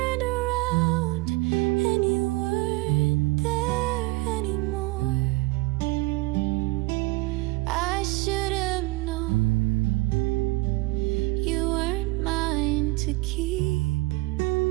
around and you weren't there anymore. I should have known you weren't mine to keep,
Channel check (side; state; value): left; quieter; 22.1 dB